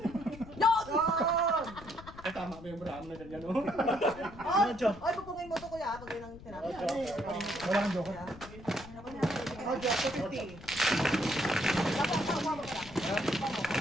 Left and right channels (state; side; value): noise; left; rumble, 17 dB below the sound